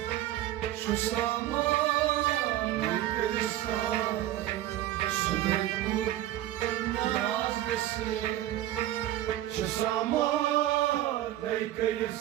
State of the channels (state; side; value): quieter; left; 13.8 dB